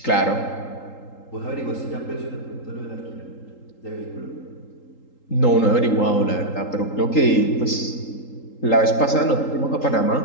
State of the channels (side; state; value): right; late; 3.8 ms